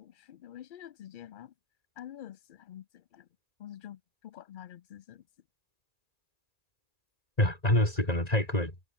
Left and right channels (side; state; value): right; late; 1.9 ms